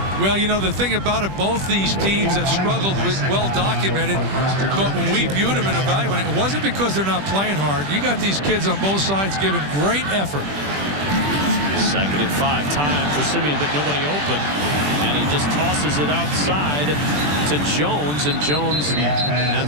Well, the thing about it, both these teams have struggled with well documented, but when we viewed them and evaluated, it wasn't because they're not playing hard. You got these kids on both sides giving great effort. Second and 5, time for Simeon, but nobody open, and he just tosses it outside to Jones, and Jones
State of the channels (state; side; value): late; left; 20 ms